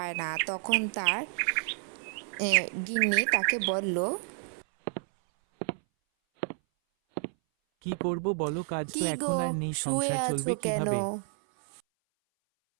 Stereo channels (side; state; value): left; silent; 58 dB below the other